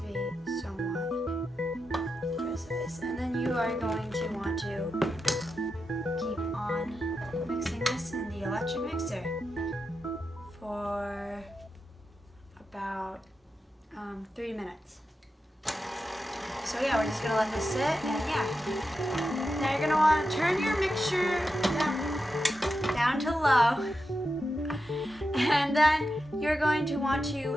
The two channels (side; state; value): both; normal; correlation 0.88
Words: be somewhat precise. And then you are going to want to keep on mixing this in the electric mixer for about 3 minutes. So yeah, we're just gonna let this sit, and yeah. Now you're gonna want to turn your mixture down to low, and then you're going to want